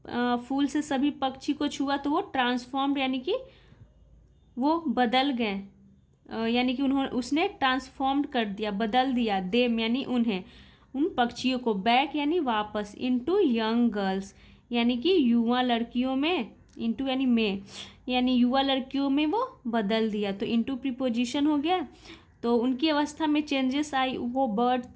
फूल से सभी पक्षी को छुआ तो वो ट्रांसफॉर्म्ड यानी कि वो बदल गए, यानी कि उसने ट्रांसफॉर्म्ड कर दिया, बदल दिया, देम यानी उन्हें, उन पक्षियों को, बैक यानी वापस, इनटू यंग गर्ल्स यानी कि युवा लड़कियों में, इनटू यानी में, यानी युवा लड़कियों में वो बदल दिया। तो इनटू प्रीपोजिशन हो गया। तो उनकी अवस्था में चेंजेस आई, वो बर्ड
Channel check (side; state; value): both; identical; correlation 1.00